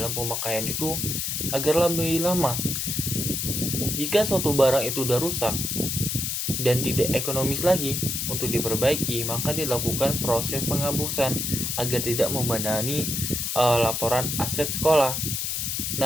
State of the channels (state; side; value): noise; left; hiss, 1 dB below the sound